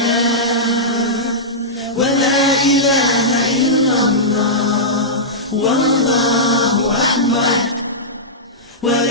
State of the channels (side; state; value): both; normal; correlation -0.13